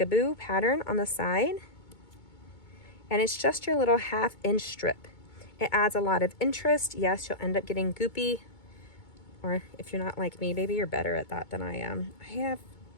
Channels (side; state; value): right; late; 2.2 ms